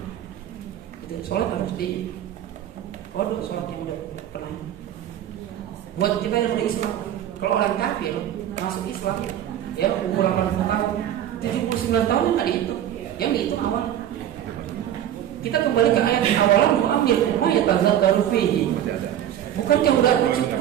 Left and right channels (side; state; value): left; quieter; 11.1 dB